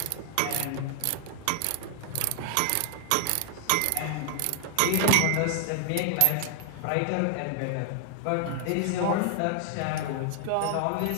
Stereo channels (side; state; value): both; different; correlation 0.00